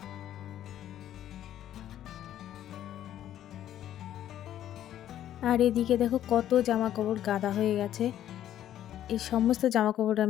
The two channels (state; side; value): quieter; right; 11.6 dB